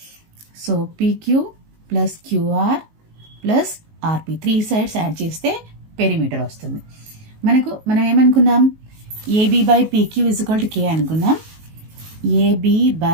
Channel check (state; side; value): late; left; 19 ms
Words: So PQ plus QR plus RP 3 sides add చేస్తే perimeter వస్తుంది. మనం ఏమనుకున్నాం? AB by PQ is equal to K అనుకున్నాం. AB